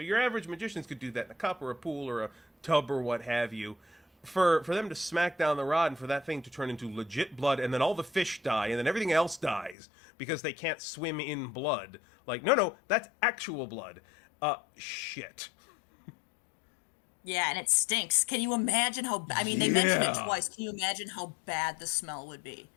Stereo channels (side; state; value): right; drops out; at 9.8 s